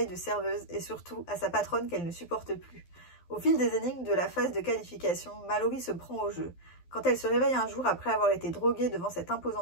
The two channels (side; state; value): right; late; 12 ms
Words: de serveuse et surtout à sa patronne qu'elle ne supporte plus. Au fil des énigmes de la phase de qualification, Mallory se prend au jeu. Quand elle se réveille un jour après avoir été droguée devant cet